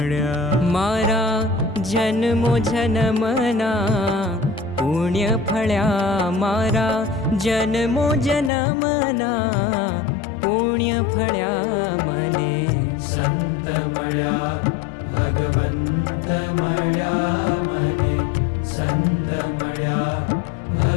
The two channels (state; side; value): drops out; right; at 8.5 s